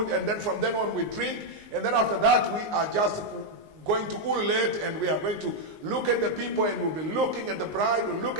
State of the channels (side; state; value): left; late; 19 ms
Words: and then from then on we drink, and then after that we are just going to ululate, and we are going to look at the people, and we'll be looking at the bride, we'll look